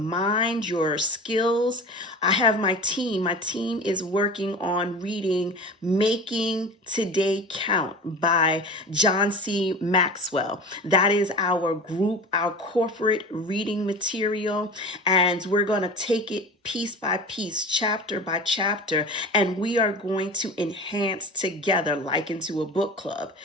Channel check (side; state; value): both; normal; correlation 0.34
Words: your skills. I have my team. My team is working on reading Making Today Count by John C. Maxwell. That is our group, our corporate reading material. And we're going to take it piece by piece, chapter by chapter, and we are going to enhance together like into a book club.